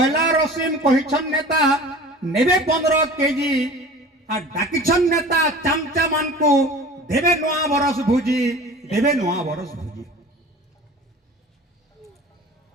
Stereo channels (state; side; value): normal; both; correlation 0.41